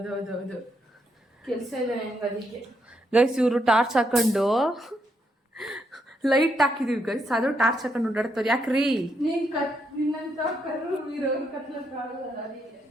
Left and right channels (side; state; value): both; normal; correlation 0.78